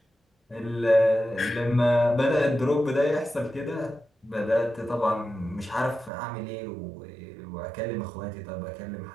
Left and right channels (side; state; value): left; drops out; at 6.1 s